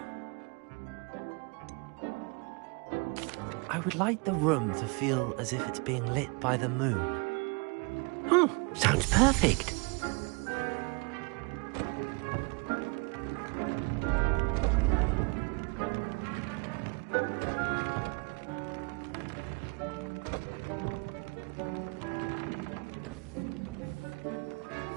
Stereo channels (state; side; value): quieter; left; 30.5 dB